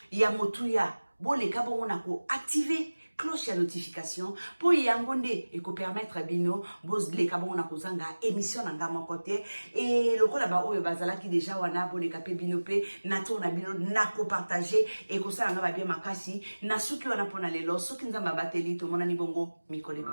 ya motuya boleka bongo na ko activer cloche ya notification pour yangonde et ko permettre bino bos leka bongo na ko zanga émission na ngama côté et lokola ba oyo bazala ki déjà wana boleka pe bino pe na tourna bino na ko partager et ko sala ngaba bien makasi na suki wana pona lelo soki nzamba bateli to mona ni bongo mikole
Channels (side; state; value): both; inverted; correlation -1.00